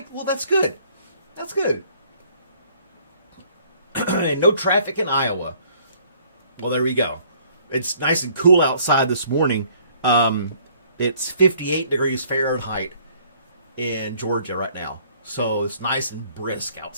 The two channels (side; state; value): both; inverted; correlation -0.60